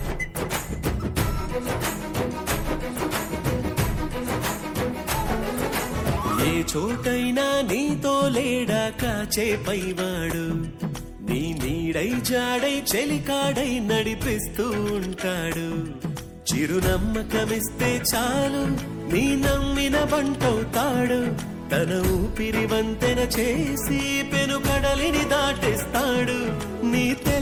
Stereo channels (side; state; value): both; identical; correlation 1.00